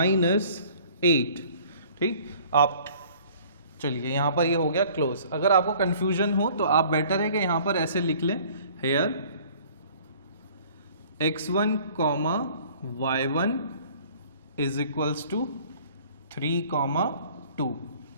8। ठीक, आप चलिए यहाँ पर ये हो गया क्लोज। अगर आपको कंफ्यूजन हो तो आप बेटर है कि यहाँ पर ऐसे लिख लें, hair x1 y1 is equals to 3, 2।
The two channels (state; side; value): inverted; both; correlation -0.53